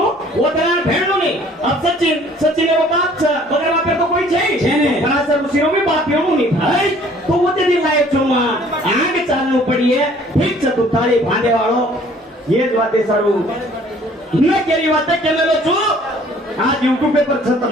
ओतरा भेटलो नाही अब सचिन रो बाप छ बगर बाप तो कोई छे पराशर ऋषी रो भी बाप येऊ नहीं भाई तो ओते दी लायचो मा आग चालू पડીએ ઠીક છે તું તાળી ભાંડે વાળો એ જ વાતે સારું ન કેરી વાતે કેમેલો છું आज YouTube पे पर खत्म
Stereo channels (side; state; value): both; normal; correlation 0.55